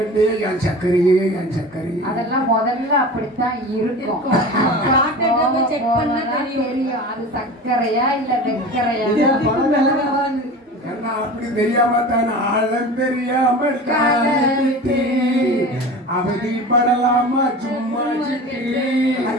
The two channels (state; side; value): normal; both; correlation 0.34